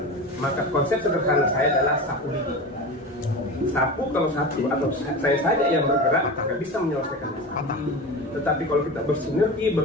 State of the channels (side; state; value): both; normal; correlation 0.28